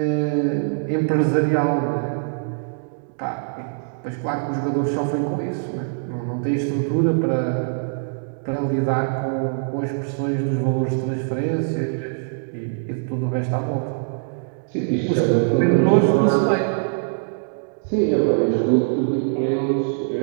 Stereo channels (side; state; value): left; silent; digital silence